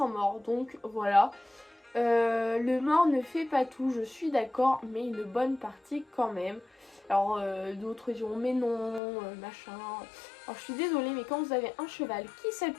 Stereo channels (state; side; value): drops out; right; at 9.0 s